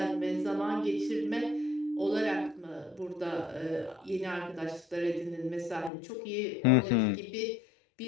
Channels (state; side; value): drops out; right; at 5.9 s